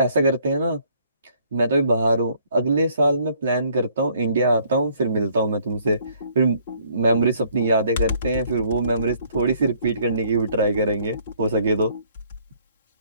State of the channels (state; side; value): inverted; both; correlation -0.63